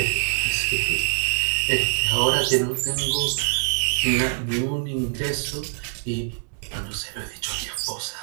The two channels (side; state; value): left; silent; digital silence